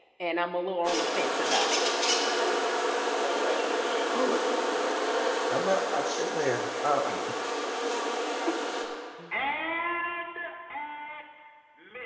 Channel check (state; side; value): identical; both; correlation 1.00